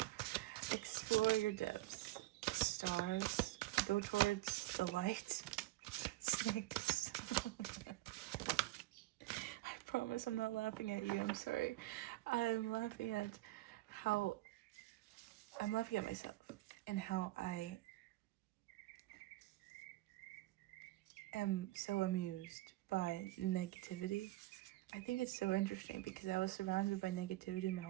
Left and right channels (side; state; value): left; quieter; 17.9 dB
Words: Explore your depths. Stars, go towards the light. Snakes. I promise I'm not laughing at you, I'm sorry. I'm laughing at myself and how I am so amused by negativity. I think it's so interesting because I was surrounded by negativity my